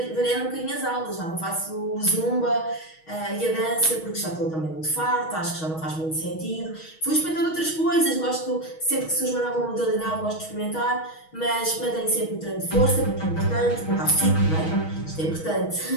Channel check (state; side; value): late; right; 6.3 ms